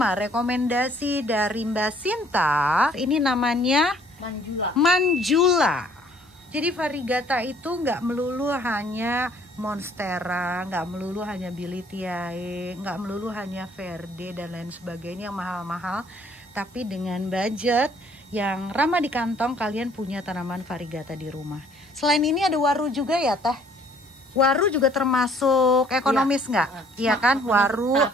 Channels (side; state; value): both; normal; correlation 0.60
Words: rekomendasi dari Mbak Sinta. Ini namanya Manjula. Jadi variegata itu nggak melulu hanya monstera, nggak melulu hanya bilitiae, nggak melulu hanya verde dan lain sebagainya yang mahal-mahal. Tapi dengan budget yang ramah di kantong, kalian punya tanaman variegata di rumah. Selain ini ada waru juga ya Teh? Waru juga termasuk ekonomis nggak? Iya kan, waru.